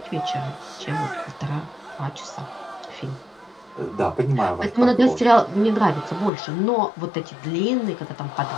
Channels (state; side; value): drops out; right; at 6.3 s